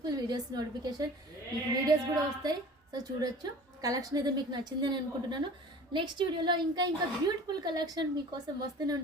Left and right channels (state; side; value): normal; both; correlation 0.43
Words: వీడియోస్ నోటిఫికేషన్ మీకు వీడియోస్ కూడా వస్తాయి. సో చూడొచ్చు, కలెక్షన్ అయితే మీకు నచ్చిందని అనుకుంటున్నాను. నెక్స్ట్ వీడియోలో ఇంకా బ్యూటిఫుల్ కలెక్షన్ మీకోసం వస్తూనే